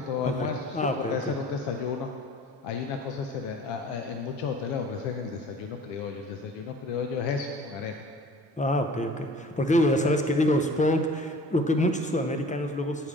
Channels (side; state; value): both; normal; correlation 0.46